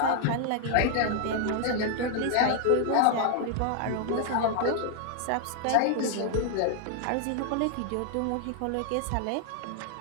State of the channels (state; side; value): different; both; correlation 0.00